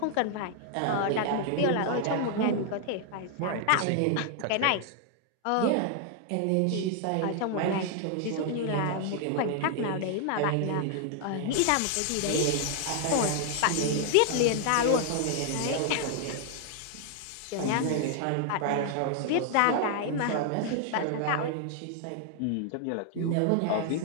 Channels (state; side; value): different; both; correlation 0.00